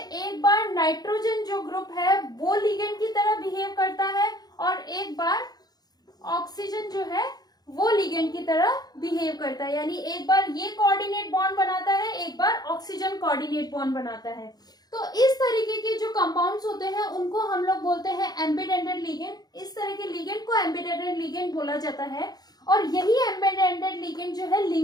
एक बार नाइट्रोजन जो ग्रुप है वो लिगेंड की तरह बिहेव करता है और एक बार ऑक्सीजन जो है वो लिगेंड की तरह बिहेव करता है, यानी एक बार ये कोऑर्डिनेट बॉन्ड बनाता है, एक बार ऑक्सीजन कोऑर्डिनेट बॉन्ड बनाता है। तो इस तरीके के जो कंपाउंड्स होते हैं उनको हम लोग बोलते हैं एम्बीडेंटेड लिगेंड। इस तरह के लिगेंड को एम्बीडेंटेड लिगेंड बोला जाता है और यही एम्बीडेंटेड लिगेंड जो है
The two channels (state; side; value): late; right; 0.19 ms